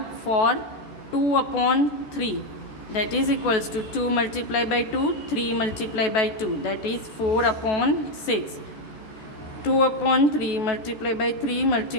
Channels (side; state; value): right; late; 14 ms